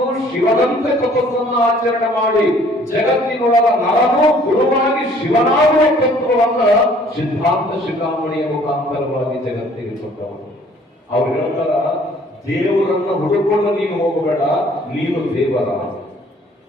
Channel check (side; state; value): both; normal; correlation 0.57